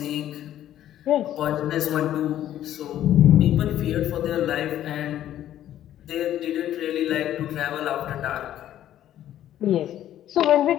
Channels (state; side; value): quieter; right; 12.0 dB